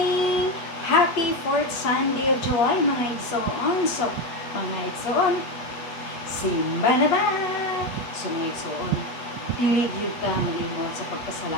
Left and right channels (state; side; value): late; right; 8.2 ms